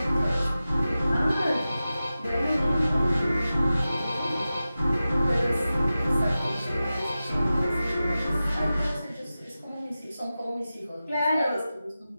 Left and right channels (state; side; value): inverted; both; correlation -0.94